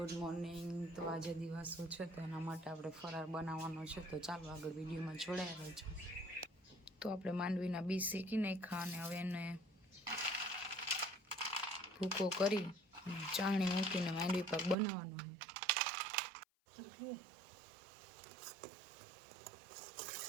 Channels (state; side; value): drops out; left; at 14.8 s